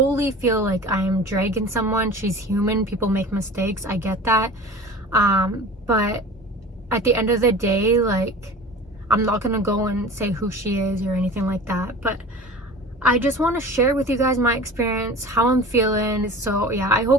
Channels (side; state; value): both; normal; correlation 0.39